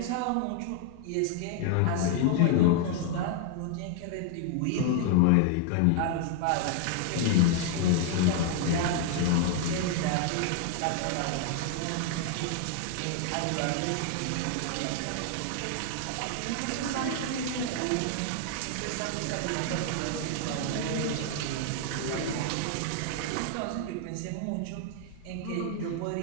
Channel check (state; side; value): different; both; correlation 0.00